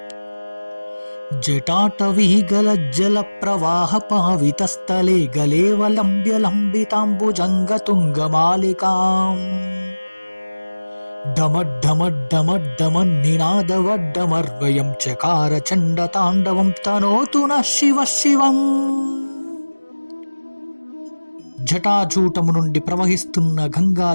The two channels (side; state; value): both; inverted; correlation -1.00